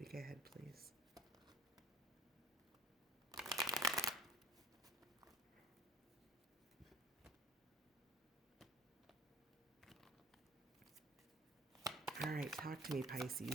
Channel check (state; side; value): normal; both; correlation 0.50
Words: ahead, please. All right, talk to me,